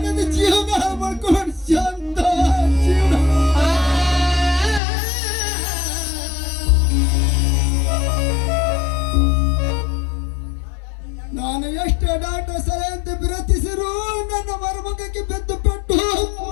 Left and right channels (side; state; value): right; drops out; at 4.8 s